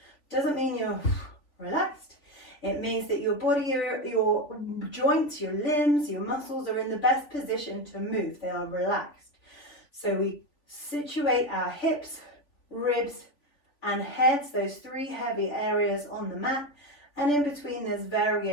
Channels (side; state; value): right; late; 3.5 ms